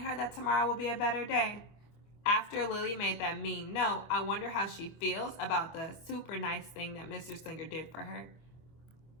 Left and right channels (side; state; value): right; late; 25 ms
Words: her that tomorrow will be a better day. After Lily made that mean note, I wonder how she feels about the super nice thing that Mr. Slinger did for her.